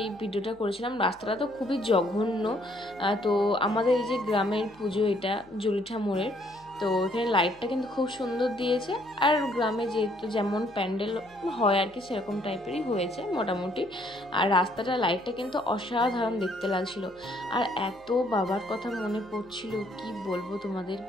এই ভিডিওটা করেছিলাম। রাস্তাটা তো খুবই জঘন্য। তো আমাদের এই যে গ্রামের পুজো, এটা জলিঠা মোড়ের। তো এখানে লাইটটা কিন্তু খুব সুন্দর দিয়েছে, আর গ্রামে যেহেতু যেমন প্যান্ডেল হয় আর কি সেরকম টাইপেরই হয়েছে মোটামুটি। আর রাস্তাটা লাইটটা কিন্তু অসাধারণ দেখতে লাগছিল। আর এত বাবার কথা মনে পড়ছিল, কি বলবো তোমাদের,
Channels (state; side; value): noise; left; hum, 28 dB below the sound